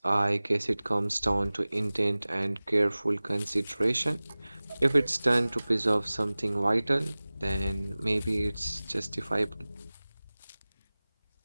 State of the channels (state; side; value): inverted; both; correlation -0.99